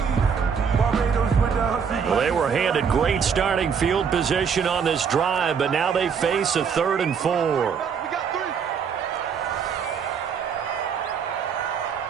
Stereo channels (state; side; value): quieter; left; 6.7 dB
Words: Well, they were handed great starting field position on this drive, but now they face a 3rd and 4.